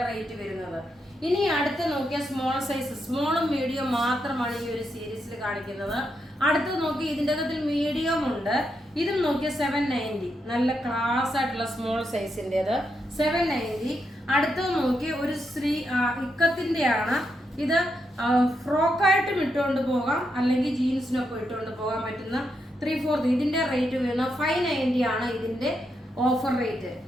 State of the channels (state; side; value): normal; both; correlation 0.82